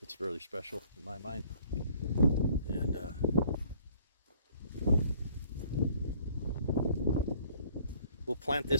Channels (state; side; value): inverted; both; correlation -0.58